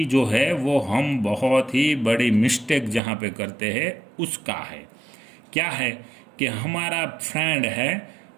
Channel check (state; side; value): drops out; left; at 3.0 s